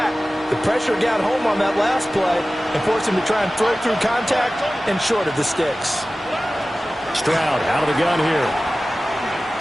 The pressure got home on that last play and forced him to try and throw through contact and short of the sticks. Stroud out of the gun here.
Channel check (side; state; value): both; normal; correlation 0.96